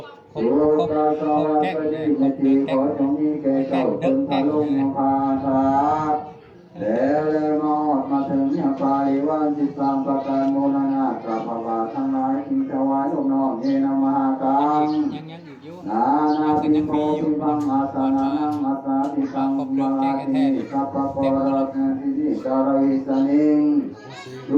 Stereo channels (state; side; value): identical; both; correlation 1.00